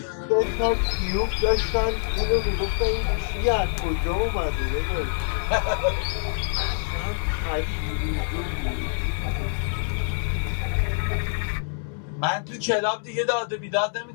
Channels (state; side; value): silent; right; 61 dB below the other